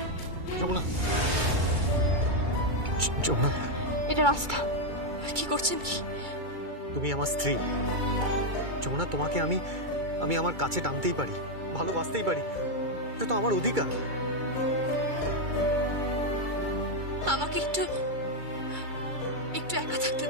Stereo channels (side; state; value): left; late; 2.3 ms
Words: যমুনা, যমুনা, এটা রাস্তা। কি করছেন কি? তুমি আমার স্ত্রী যমুনা, তোমাকে আমি আমার কাছে টানতেই পারি, ভালোবাসতেই পারি। এটা তো আমার অধিকার। আমাকে একটু একা থাকতে